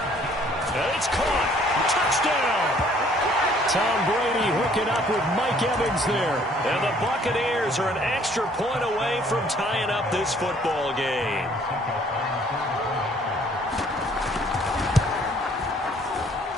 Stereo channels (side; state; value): both; normal; correlation 0.60